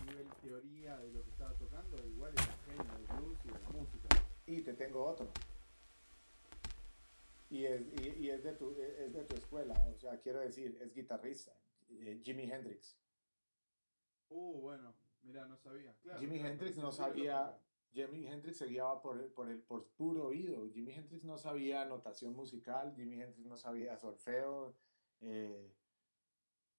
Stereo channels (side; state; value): both; inverted; correlation -1.00